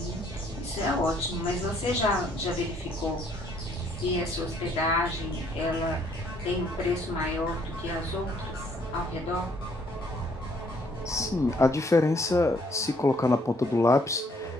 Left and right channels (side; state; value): both; normal; correlation 0.65